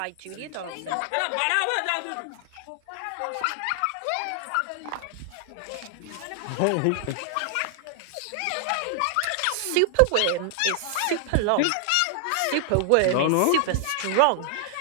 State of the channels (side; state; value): both; different; correlation 0.00